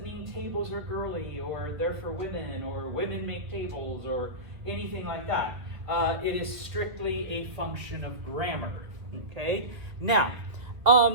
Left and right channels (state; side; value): late; left; 2.0 ms